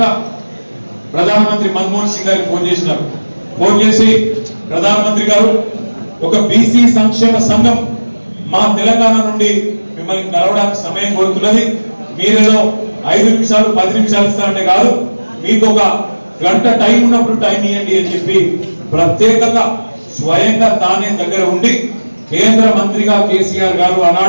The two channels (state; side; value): inverted; both; correlation -1.00